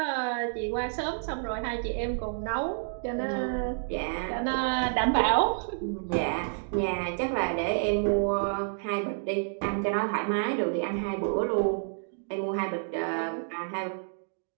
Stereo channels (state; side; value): silent; left; digital silence